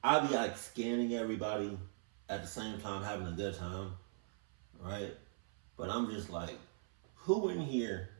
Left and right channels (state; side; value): silent; left; 51 dB below the other